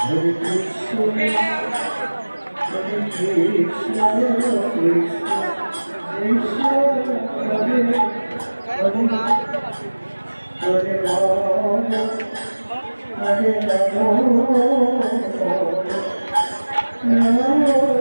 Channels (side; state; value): both; inverted; correlation -1.00